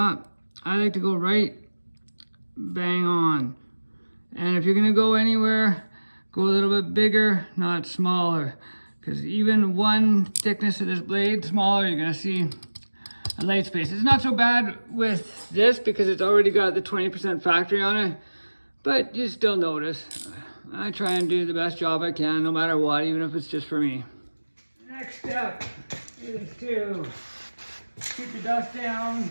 I like to go right bang on. And if you're gonna go anywhere, go a little bit bigger, not smaller. Because even one thickness of this blade smaller, you're gonna see a light space. It's not so bad with this because it's already got the 20% factory on it, but you still notice. I try and do the best job I can, no matter what, even if it's just for me. Next step is to keep the dust down.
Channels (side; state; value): both; inverted; correlation -1.00